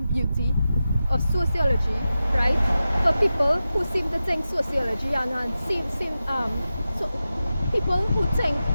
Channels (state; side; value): inverted; both; correlation -0.93